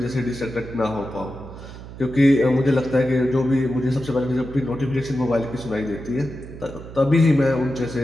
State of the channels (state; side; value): noise; right; hum, 14 dB below the sound